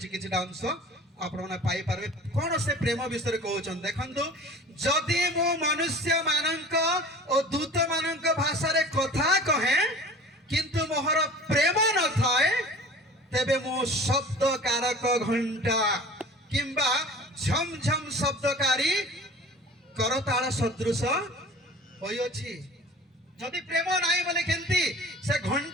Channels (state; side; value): normal; both; correlation 0.42